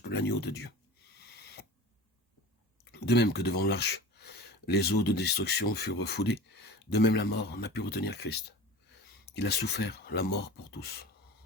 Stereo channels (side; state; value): both; normal; correlation 0.36